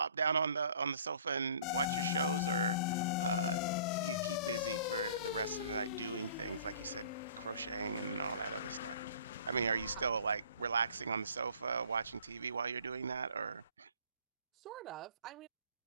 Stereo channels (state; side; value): inverted; both; correlation -0.51